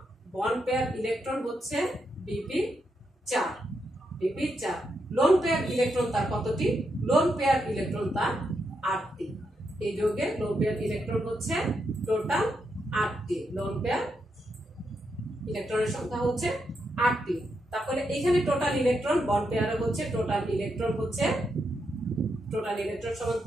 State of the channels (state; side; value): normal; both; correlation 0.82